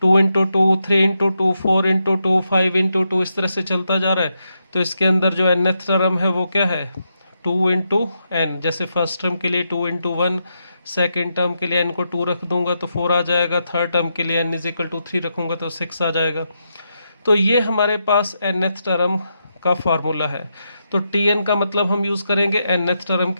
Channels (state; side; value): inverted; both; correlation -0.83